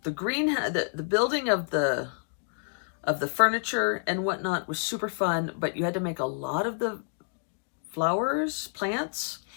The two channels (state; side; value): silent; right; digital silence